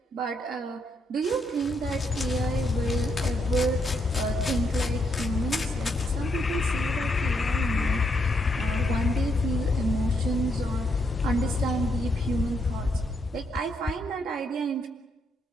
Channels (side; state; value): both; normal; correlation 0.77